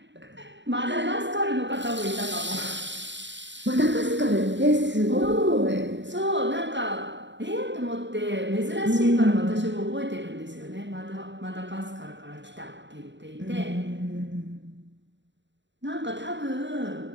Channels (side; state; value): left; late; 0.53 ms